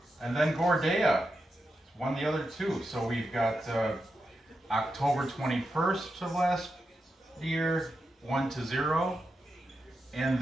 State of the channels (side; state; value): both; normal; correlation 0.88